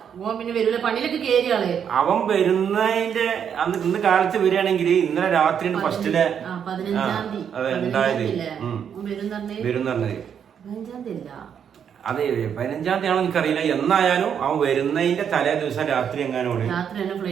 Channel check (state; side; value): quieter; left; 8.1 dB